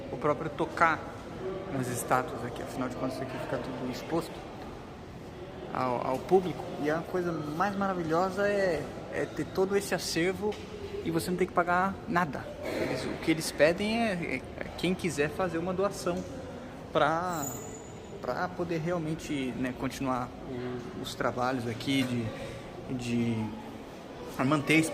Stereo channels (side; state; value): both; identical; correlation 1.00